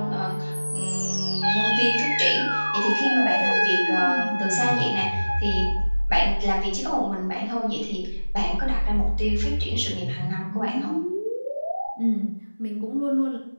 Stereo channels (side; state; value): both; inverted; correlation -1.00